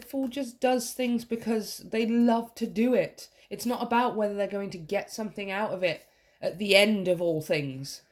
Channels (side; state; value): both; identical; correlation 1.00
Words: Fool just does things because they love to do it. It's not about whether they're going to get something out of it at the end of all things.